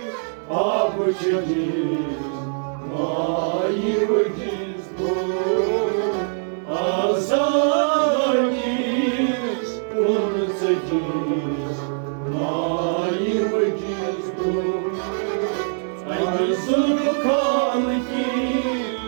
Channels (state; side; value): silent; left; digital silence